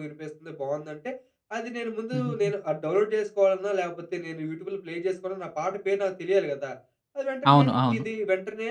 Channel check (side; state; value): both; identical; correlation 1.00